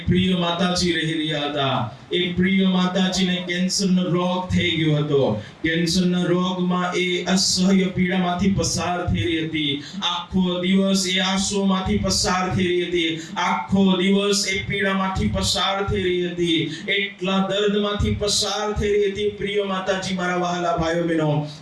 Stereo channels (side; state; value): both; identical; correlation 1.00